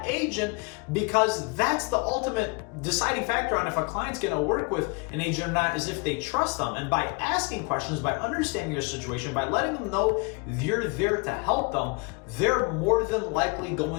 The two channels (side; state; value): right; quieter; 31.0 dB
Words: agent, because that's the ultimate deciding factor on if a client's gonna work with an agent or not, is if they trust them. And by asking questions, by understanding your situation, by letting them know you're there to help them, they're more than likely